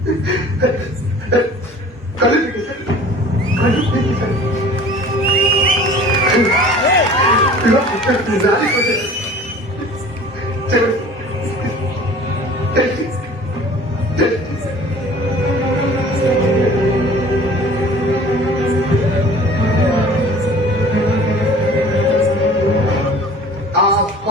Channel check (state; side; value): normal; both; correlation 0.46